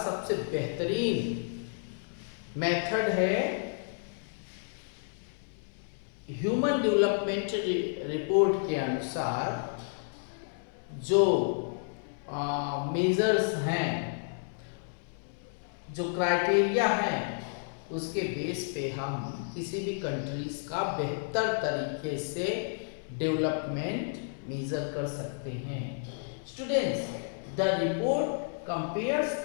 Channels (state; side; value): silent; right; 57 dB below the other